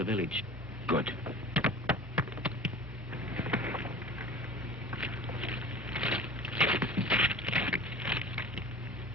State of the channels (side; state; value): both; normal; correlation 0.38